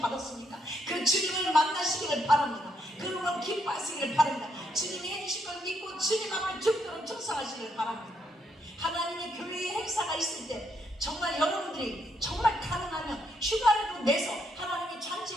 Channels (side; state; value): both; normal; correlation 0.76